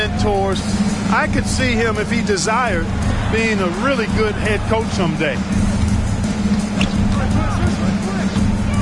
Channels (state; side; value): identical; both; correlation 1.00